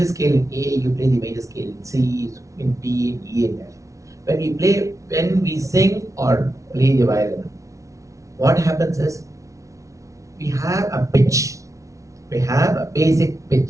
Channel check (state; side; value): late; left; 0.15 ms